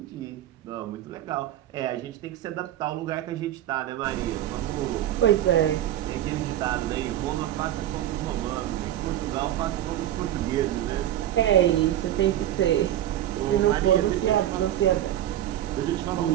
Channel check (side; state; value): left; quieter; 12.3 dB